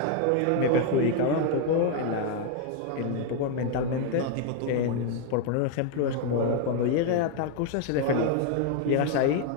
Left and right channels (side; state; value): both; different; correlation 0.00